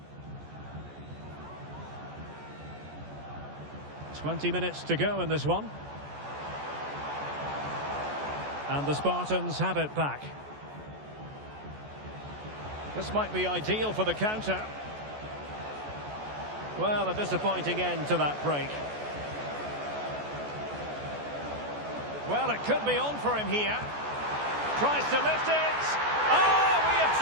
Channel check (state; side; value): late; left; 14 ms